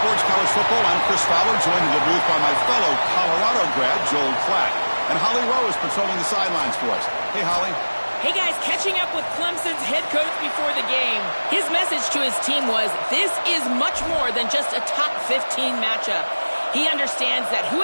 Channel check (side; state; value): both; inverted; correlation -1.00